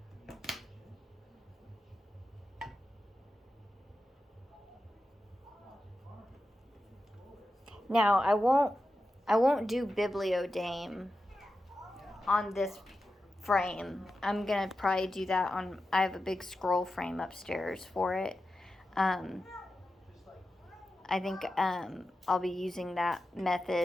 Now, I won't do bibliodame on this frame. I'm gonna probably do that on. I have a big scroll frame upstairs for it. I think I'll be using that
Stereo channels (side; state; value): both; normal; correlation 0.91